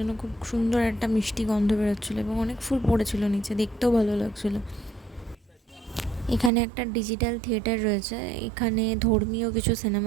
খুব সুন্দর একটা মিষ্টি গন্ধ বেরোচ্ছিলো, এবং অনেক ফুল পড়েছিল নিচে, দেখতেও ভালো লাগছিলো। এখানে একটা ডিজিটাল থিয়েটার রয়েছে, এখানে ধর্মীয় কিছু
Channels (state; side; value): drops out; left; at 6.5 s